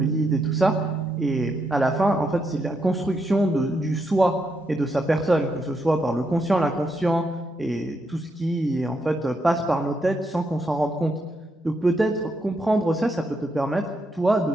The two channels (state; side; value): normal; both; correlation 0.80